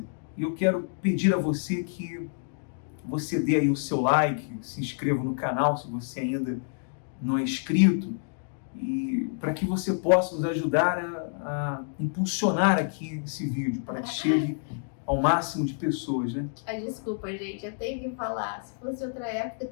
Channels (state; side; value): silent; right; digital silence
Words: E eu quero pedir a você que você dê aí o seu like, se inscreva no canal se você ainda não é inscrito, e para que você possa nos ajudar a impulsionar aqui esse vídeo, para que chegue ao máximo de pessoas, né? Desculpa, gente, eu tenho que falar. Se fosse outra época,